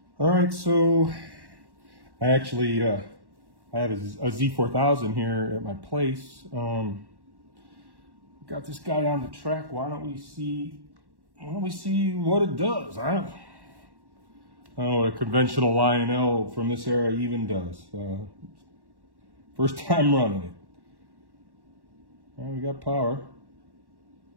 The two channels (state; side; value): late; left; 1.1 ms